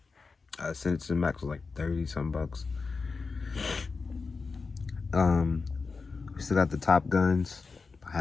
Send It to the Max was like 30 some bucks. We still got the Top Guns,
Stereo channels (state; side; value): quieter; right; 4.5 dB